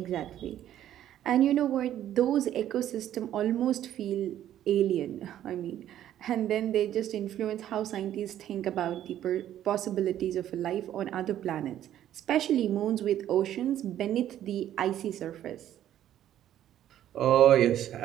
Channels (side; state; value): left; quieter; 11.6 dB